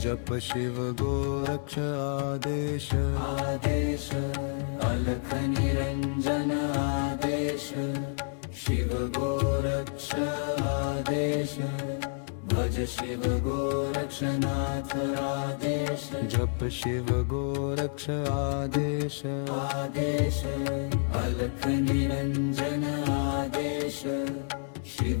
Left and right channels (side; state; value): right; silent; digital silence